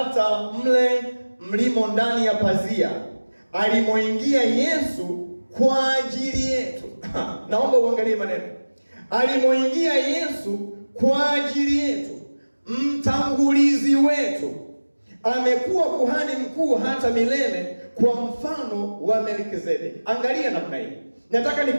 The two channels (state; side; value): inverted; both; correlation -1.00